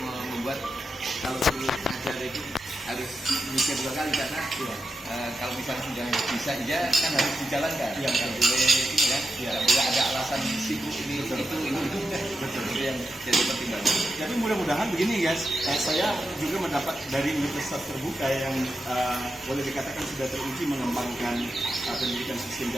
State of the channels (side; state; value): both; normal; correlation 0.87